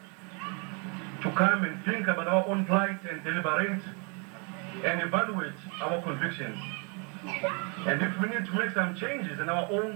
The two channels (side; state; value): left; quieter; 35.1 dB